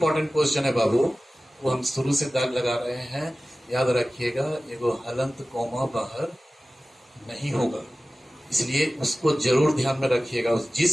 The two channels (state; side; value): normal; both; correlation 0.96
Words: क्वेश्चन है बाबू वो हम शुरू से दाग लगा रहे हैं, याद रखिएगा, एगो हलंत कोमा बाहर नहीं होगा, इसलिए उसको जरूर ध्यान में रखिएगा।